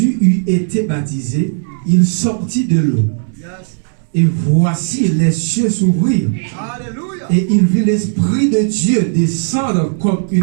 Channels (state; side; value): silent; left; digital silence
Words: eut été baptisé, il sortit de l'eau. Et voici les cieux s'ouvrirent. Et il vit l'Esprit de Dieu descendre comme